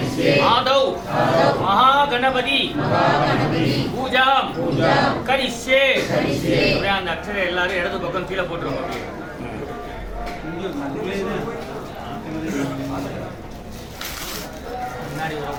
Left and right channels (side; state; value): both; identical; correlation 1.00